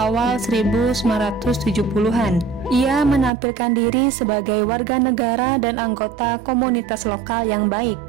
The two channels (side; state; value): left; drops out; at 3.3 s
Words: 1970-an. Ia menampilkan diri sebagai warga negara dan anggota komunitas lokal yang baik.